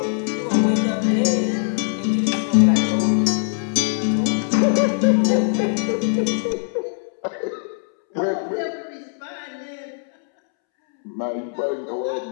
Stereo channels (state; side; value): silent; right; 65 dB below the other